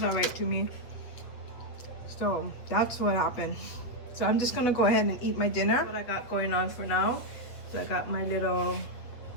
all right to me. So that's what happened. So I'm just gonna go ahead and eat my dinner. That's what I got going on for now. So I got my little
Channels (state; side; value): late; right; 8.4 ms